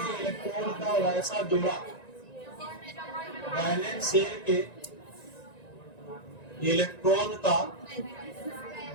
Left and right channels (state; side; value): late; right; 1.9 ms